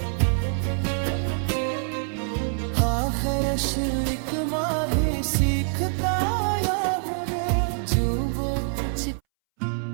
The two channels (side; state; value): left; silent; 62 dB below the other